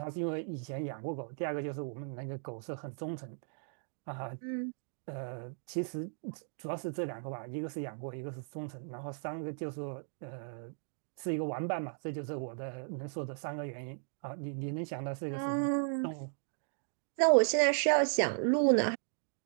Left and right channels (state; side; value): silent; left; digital silence